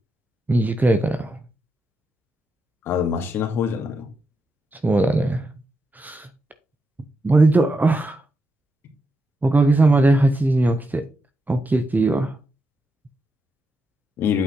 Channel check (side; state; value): both; normal; correlation 0.84